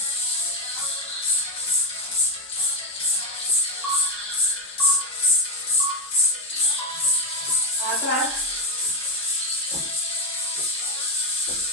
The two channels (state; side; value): normal; both; correlation 0.07